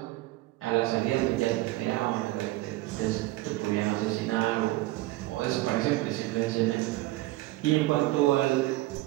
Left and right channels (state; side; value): quieter; left; 18.5 dB